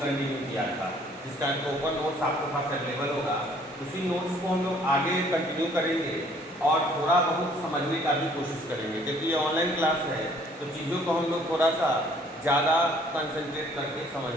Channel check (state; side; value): normal; both; correlation 0.59